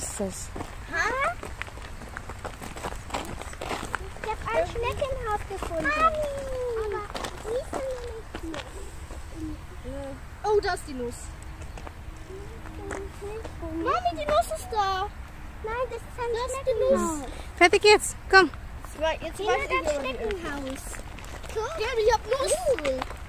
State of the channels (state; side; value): identical; both; correlation 1.00